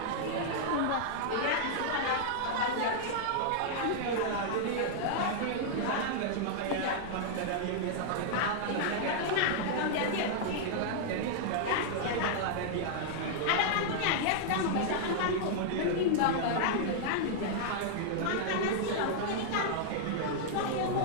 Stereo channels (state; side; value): different; both; correlation -0.01